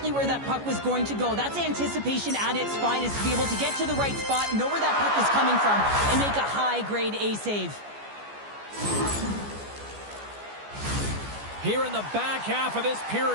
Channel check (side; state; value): left; late; 14 ms